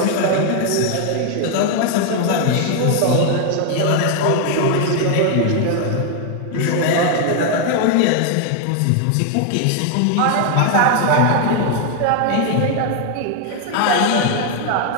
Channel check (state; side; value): different; both; correlation 0.00